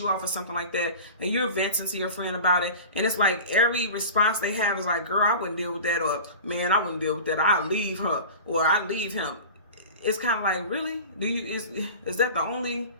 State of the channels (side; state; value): both; inverted; correlation -0.35